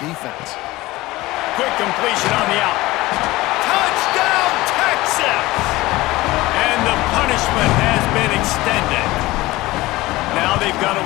Quick completion on the out. Touchdown, Texas! And the punishment has been extended. Now they've got a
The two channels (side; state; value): right; quieter; 19.1 dB